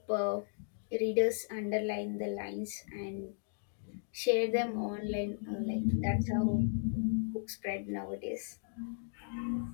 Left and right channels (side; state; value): right; silent; digital silence